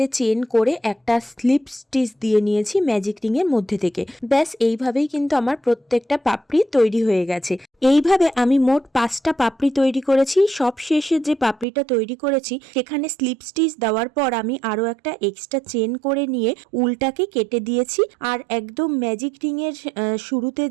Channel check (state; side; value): drops out; left; at 11.7 s